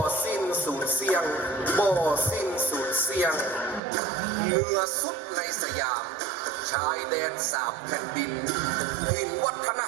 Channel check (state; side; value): drops out; left; at 3.8 s